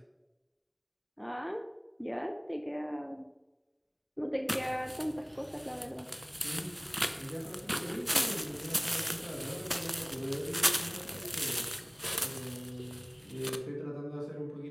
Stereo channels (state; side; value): identical; both; correlation 1.00